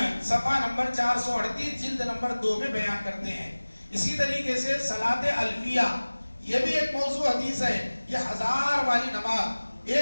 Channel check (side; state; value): both; inverted; correlation -1.00